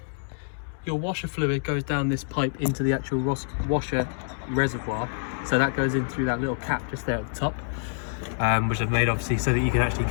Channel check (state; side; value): silent; right; digital silence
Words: Your washer fluid goes down this pipe into the actual washer reservoir, so that goes in through that little cap just there at the top, which I've made obviously so that you can actually